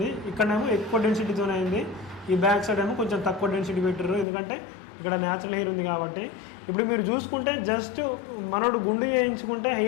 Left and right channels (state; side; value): drops out; right; at 4.2 s